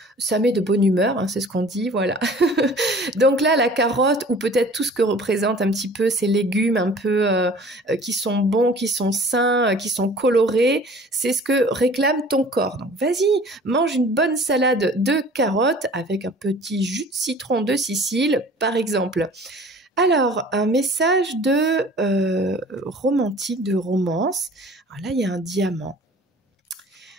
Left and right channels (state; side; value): normal; both; correlation 0.47